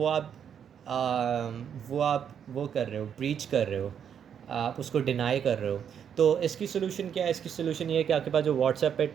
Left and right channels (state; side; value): quieter; left; 8.2 dB